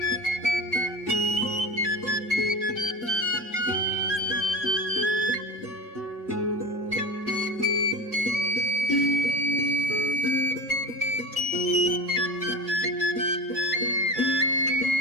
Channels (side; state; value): both; normal; correlation 0.30